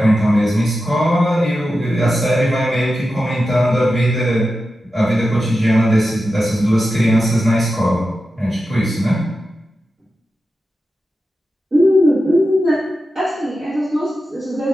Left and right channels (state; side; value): normal; both; correlation 0.91